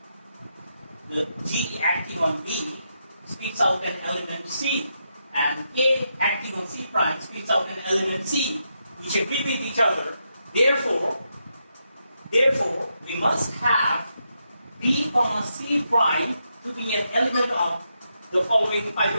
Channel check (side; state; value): both; inverted; correlation -0.83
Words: the G acting on B, spits out an element C, and A acting on C prime spits out an element C, which agree with each other. Therefore, we must have B comma C prime to be an element of the following